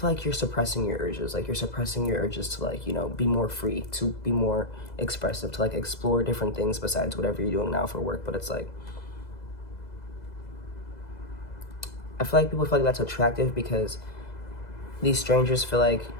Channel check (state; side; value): late; right; 2.0 ms